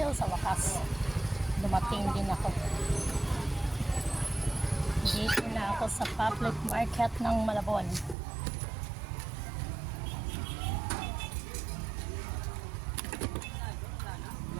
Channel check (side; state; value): left; drops out; at 8.2 s